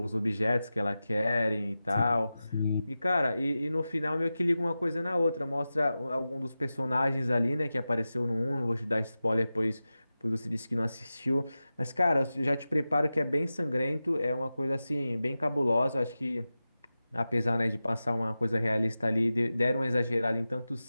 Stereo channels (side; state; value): both; inverted; correlation -0.94